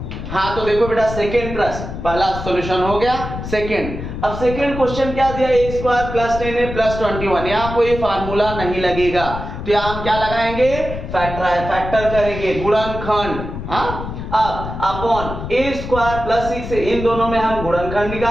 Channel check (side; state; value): left; noise; rumble, 8 dB below the sound